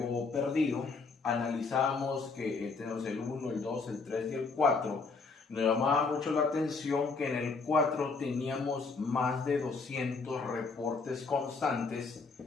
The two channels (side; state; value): right; quieter; 4.4 dB